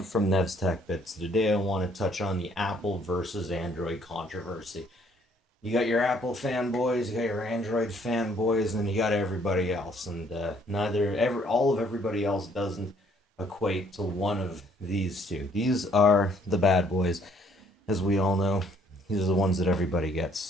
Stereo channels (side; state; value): both; normal; correlation 0.63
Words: from Nev's Tech Bits. Today I want to touch on the Apple versus Android controversy. You got your Apple fanboys, you got your Android fanboys, and then you got everybody else. And all of everybody else doesn't equate to one of these two. These are the bad boys, as we all know. These are the ones that everybody gets.